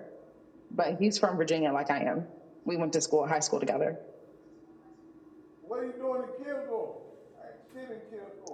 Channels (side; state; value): both; identical; correlation 1.00